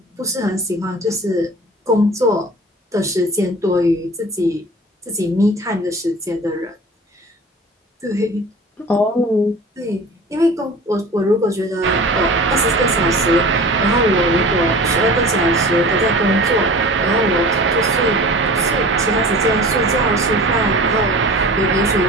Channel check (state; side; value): normal; both; correlation 0.39